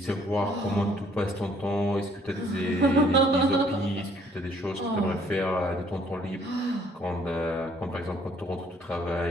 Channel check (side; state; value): both; normal; correlation 0.62